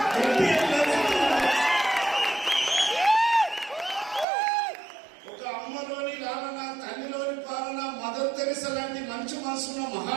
ఒక అమ్మలోని లాలన, తల్లిలోని పాలన, మదర్ తెరిసా లాంటి మంచి మనసున్న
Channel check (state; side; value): drops out; left; at 4.2 s